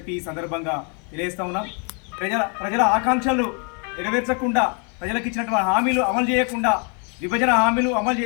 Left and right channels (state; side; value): quieter; right; 37.1 dB